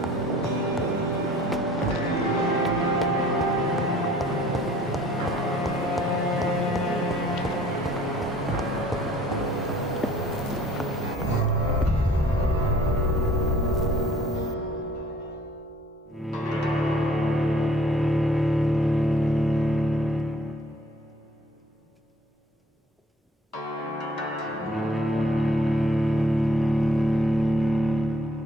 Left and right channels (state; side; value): normal; both; correlation 0.55